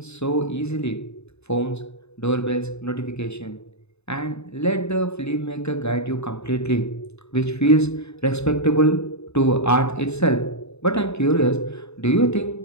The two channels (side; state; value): right; late; 0.80 ms